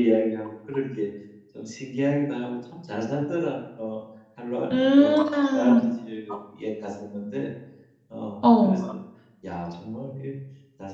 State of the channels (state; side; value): identical; both; correlation 1.00